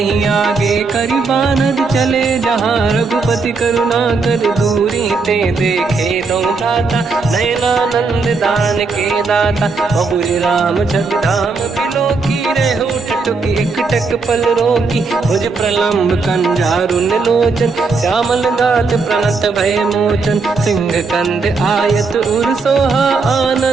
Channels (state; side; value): quieter; left; 4.3 dB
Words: आगे करि बानर चले, जहाँ रघुपति करुणा कर दूरी ते देखे दो दाता, नयनानंद दान के दाता, बहुरी राम जग धाम बिलोकी, रेहु टटुक एक टक पल रोकी, भुज प्रलम्ब कंजारुन लोचन, श्यामल गात प्रणत भय मोचन, सिंह कंद आयत उर सोहा,